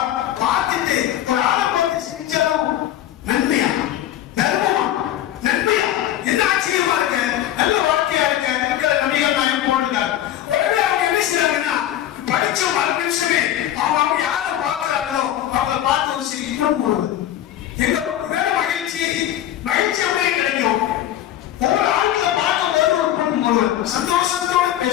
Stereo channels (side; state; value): right; quieter; 12.2 dB